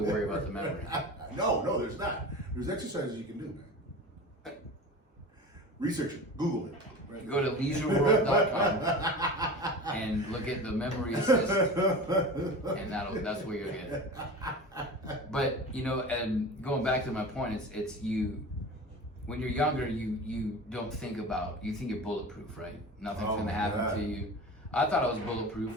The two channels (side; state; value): both; normal; correlation 0.33